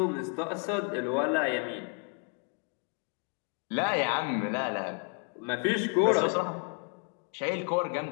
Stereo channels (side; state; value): right; quieter; 37.9 dB